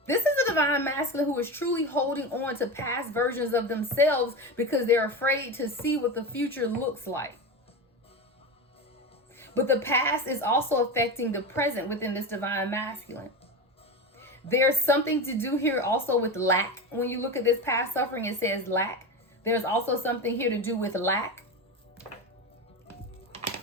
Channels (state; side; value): normal; both; correlation 0.21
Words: This is a divine masculine who is truly holding on to past versions of themselves because they're afraid to see what the future looks like. But the past is also affecting the present within this divine masculine. There's something to do here also with lack. When you look at this past suffering, it says lack. There's also something here to do with lack.